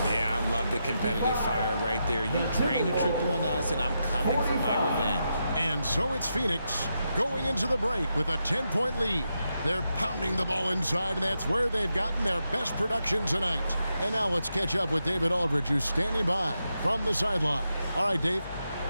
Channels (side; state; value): both; inverted; correlation -0.85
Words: Yeah, I love the competitive fire right there. You drain a triple on us, and I'm coming for my revenge. And so it's Phoenix going into the break with a 10-point lead. They're pounding the ball inside, and that's where they've gotten their best production tonight. And now let's catch up with David Aldridge, who's standing by from the sideline. All right, Dave.